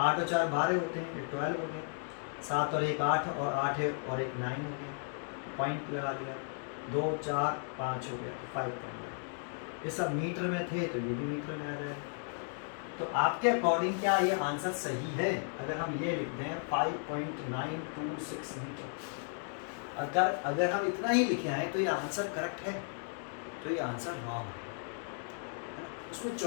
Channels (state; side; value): silent; right; 55 dB below the other